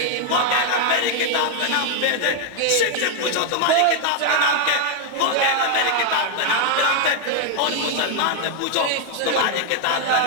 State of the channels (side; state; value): both; different; correlation 0.00